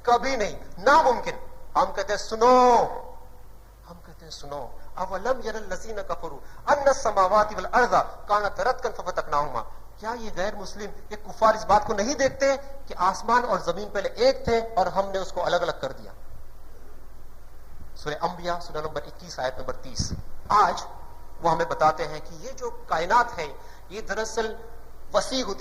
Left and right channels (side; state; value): both; identical; correlation 1.00